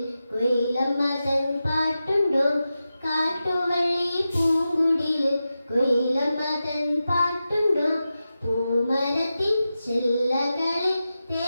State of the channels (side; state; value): both; inverted; correlation -0.92